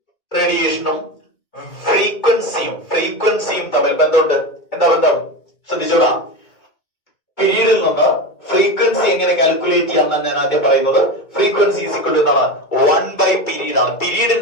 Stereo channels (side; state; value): right; late; 2.1 ms